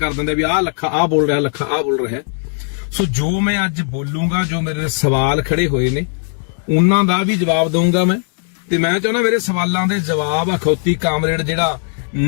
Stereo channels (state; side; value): silent; right; 57 dB below the other